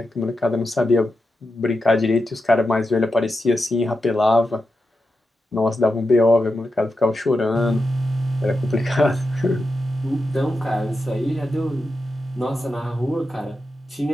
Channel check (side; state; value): both; normal; correlation 0.89